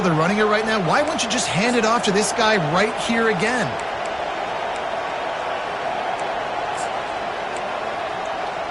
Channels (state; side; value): identical; both; correlation 1.00